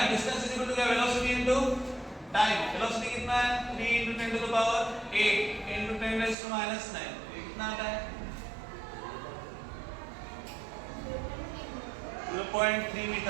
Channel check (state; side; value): drops out; left; at 6.4 s